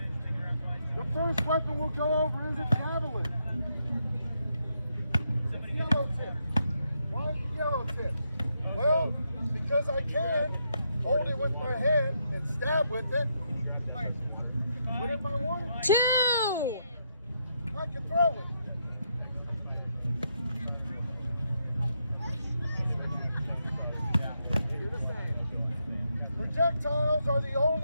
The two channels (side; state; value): both; inverted; correlation -0.79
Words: The first weapon we'll go over is a javelin. It's yellow tip. Why is it yellow tip? Well, because I can hold it with my hand and stab with it. But if I wanted to, 2! I can throw it. Projectiles are the